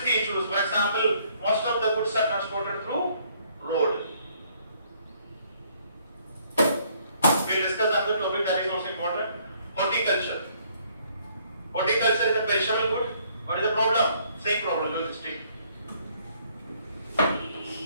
issues. For example, most of the goods are transported through road. We'll discuss another topic that is also important. Horticulture. Horticulture is a perishable good. What is the problem? Same problem, logistic.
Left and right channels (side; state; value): both; inverted; correlation -0.65